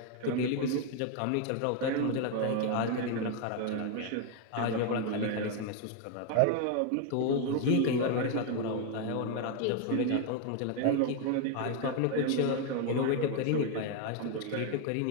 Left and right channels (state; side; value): different; both; correlation 0.01